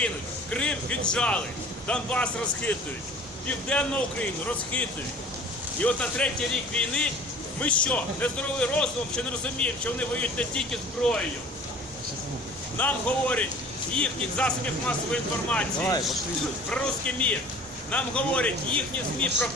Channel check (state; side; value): normal; both; correlation 0.46